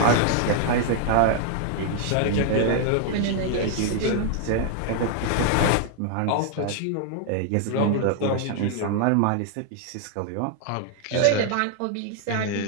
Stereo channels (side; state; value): both; different; correlation 0.00